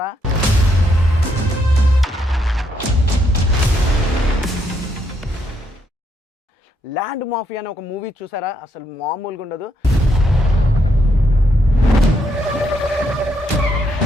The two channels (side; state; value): both; normal; correlation 0.76